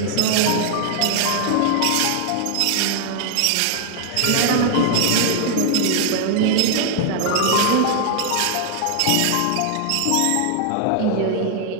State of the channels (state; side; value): different; both; correlation 0.00